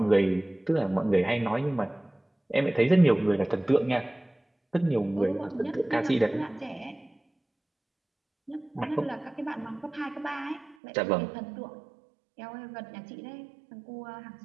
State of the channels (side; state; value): left; drops out; at 10.8 s